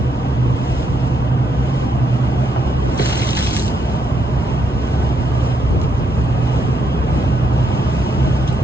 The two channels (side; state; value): both; normal; correlation 0.76